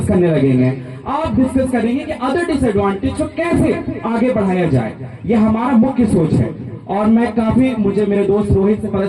करने लगेंगे। आप डिस्कस करेंगे कि अदर डिसएडवांटेज को कैसे आगे बढ़ाया जाए। ये हमारा मुख्य सोच है। और मैं काफी, मुझे मेरे दोस्त रोहित से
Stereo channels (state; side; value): identical; both; correlation 1.00